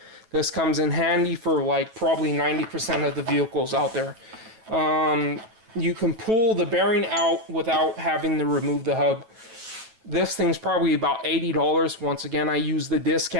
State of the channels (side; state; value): left; late; 9.0 ms